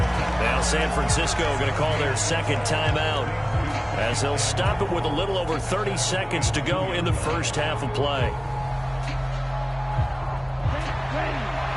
Now San Francisco going to call their second timeout as they'll stop it with a little over 30 seconds to go in the first half of play.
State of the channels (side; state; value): both; identical; correlation 1.00